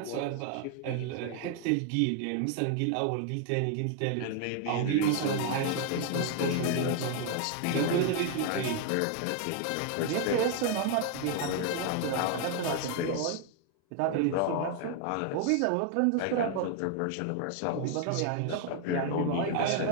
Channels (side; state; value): both; different; correlation 0.00